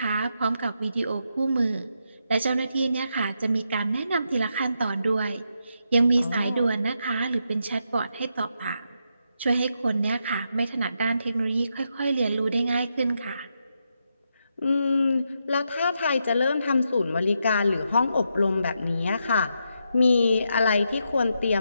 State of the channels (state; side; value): inverted; both; correlation -0.83